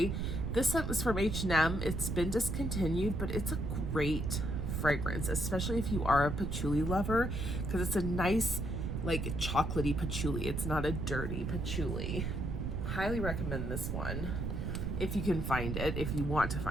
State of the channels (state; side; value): noise; right; rumble, 2 dB below the sound